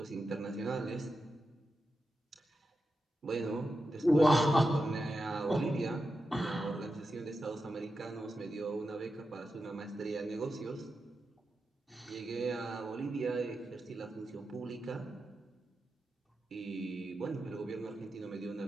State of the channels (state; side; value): normal; both; correlation 0.89